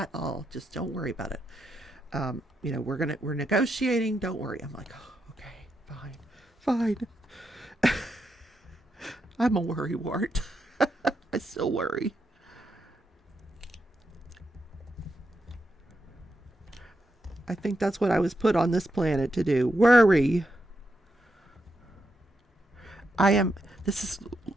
all. Just don't worry about it. We're negotiating. Don't worry. I'm like, oh, okay, fine. I'm a worrywart. I still worry. I think that's what I was put on this planet to do. Worry. This is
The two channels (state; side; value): normal; both; correlation 0.83